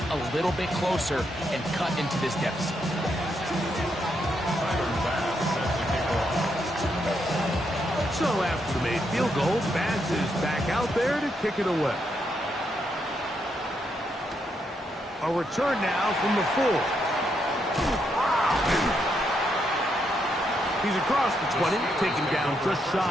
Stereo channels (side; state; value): both; normal; correlation 0.79